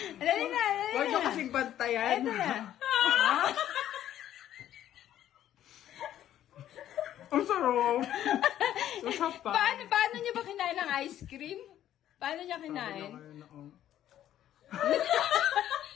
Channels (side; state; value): right; quieter; 11.7 dB